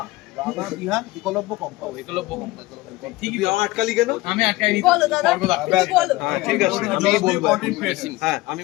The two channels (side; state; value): right; quieter; 19.8 dB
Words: রাঙা বিহান একলব্য কম্পাস একলব্য কম্পাস ঠিকই আটকালি কেন? আমি আটকাইনি। বলো দাদা, বলো। হ্যাঁ ঠিক আছে আমি বলবো হ্যাঁ আমি